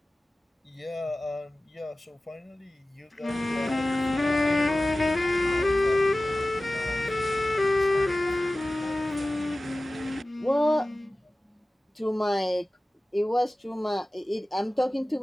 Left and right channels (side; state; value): both; normal; correlation 0.97